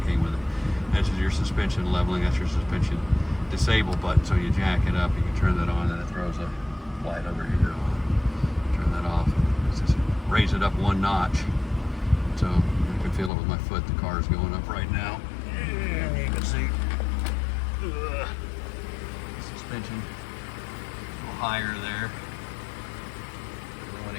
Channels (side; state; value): right; drops out; at 13.3 s